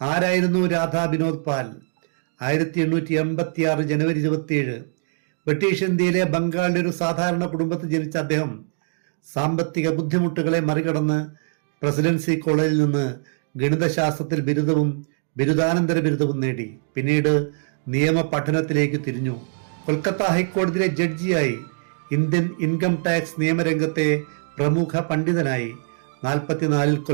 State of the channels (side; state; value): left; silent; 60 dB below the other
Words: രാധാ വിനോദ് പാൽ? 1886 ജനുവരി 27 ബ്രിട്ടീഷ് ഇന്ത്യയിലെ ബംഗാളിലെ ഒരു സാധാരണ കുടുംബത്തിൽ ജനിച്ച അദ്ദേഹം സാമ്പത്തിക ബുദ്ധിമുട്ടുകളെ മറികടന്ന് പ്രസിഡൻസി കോളേജിൽ നിന്ന് ഗണിതശാസ്ത്രത്തിൽ ബിരുദവും ബിരുദാനന്തര ബിരുദവും നേടി. പിന്നീട് നിയമ പഠനത്തിലേക്ക് തിരിഞ്ഞു. കൊൽക്കത്ത ഹൈക്കോടതിയിലെ ജഡ്ജിയായി. ഇന്ത്യൻ ഇൻകം ടാക്സ് നിയമരംഗത്തെ പ്രമുഖ പണ്ഡിതനായി. 44